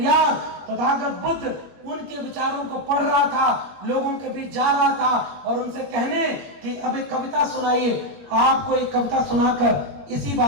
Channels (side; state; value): left; late; 21 ms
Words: तथागत बुद्ध, उनके विचारों को पढ़ रहा था, लोगों के बीच जा रहा था और उनसे कहने कि अब एक कविता सुनाइए। आपको एक कविता सुनाकर इसी